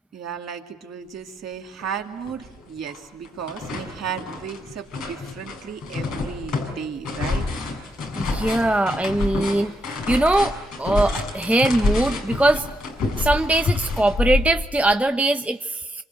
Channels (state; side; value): normal; both; correlation 0.80